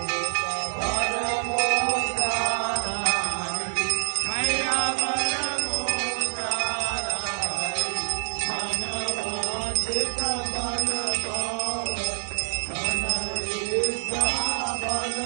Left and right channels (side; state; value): left; silent; digital silence